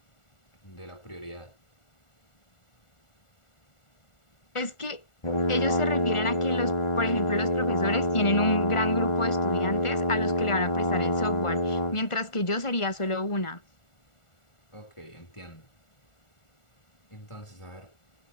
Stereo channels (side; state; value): right; late; 1.4 ms